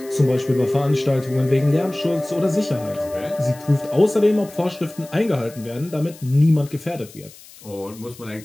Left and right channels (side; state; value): left; noise; hiss, 21 dB below the sound